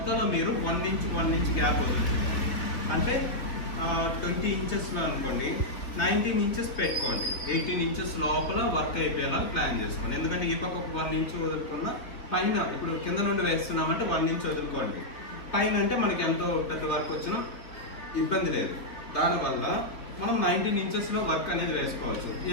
మీరు 1 ఇంచ్ గ్యాప్ వదులుతుంది. అంటే 20 ఇంచెస్లో అనుకోండి 19 ఇంచెస్ పెట్టుకోండి, 18 ఇంచెస్ లోపల వర్క్ అయిపోయేలా ప్లాన్ చేసుకోండి. ఎందుకంటే ఈ పక్క ఒక 1 ఇంచ్ వదులుకున్న పైన ఇప్పుడు కింద నుండి వేస్తున్నామంటే 1 ఇంచ్ వదులుకోండి, పైన అంటే మనకి ఎంతో పెద్ద వర్క్ వచ్చినా ఇబ్బంది లేదు. దానివల్ల మనం 19 ఇంచెస్లో వర్క్ అనేది వేసుకోవచ్చు.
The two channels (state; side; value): late; right; 3.7 ms